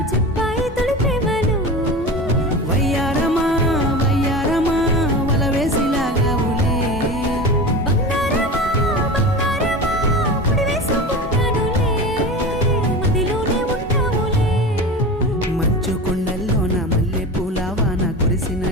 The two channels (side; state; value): both; normal; correlation 0.30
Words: చెప్పాయి తొలి ప్రేమలు వయ్యారమా వయ్యారమా వల వేసిలాగావులే బంగారమా బంగారమా ముడి వేసుకుంటానులే మదిలోనే ఉంటావులే మంచు కొండల్లో నా మల్లె పూల వాన